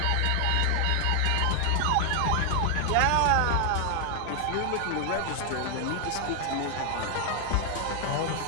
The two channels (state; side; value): different; both; correlation 0.00